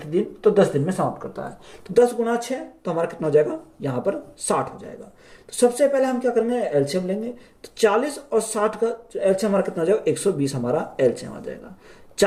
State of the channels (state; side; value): identical; both; correlation 1.00